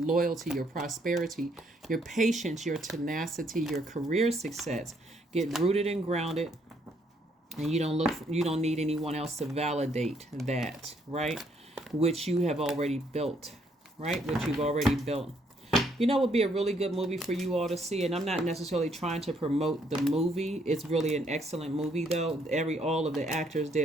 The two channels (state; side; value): normal; both; correlation 0.70